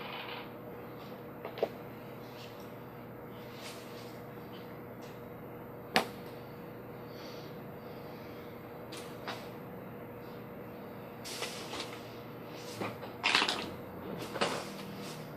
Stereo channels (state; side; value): identical; both; correlation 1.00